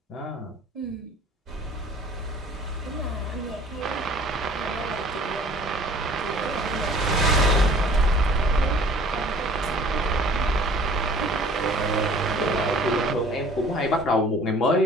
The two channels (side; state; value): both; normal; correlation 0.50